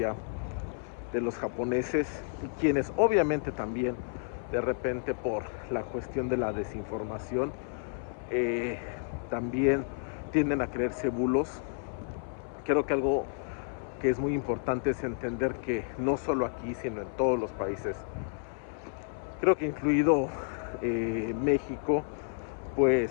de los japoneses, quienes obviamente también de repente por la cuestión de la desinformación también tienden a creerse bulos. Creo que algo que es muy importante es entender que no solo aquí sino en todos los países, creo que incluido México,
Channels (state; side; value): silent; right; 57 dB below the other